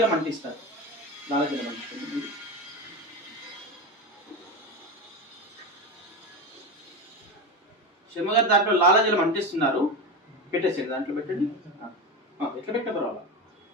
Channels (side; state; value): both; normal; correlation 0.20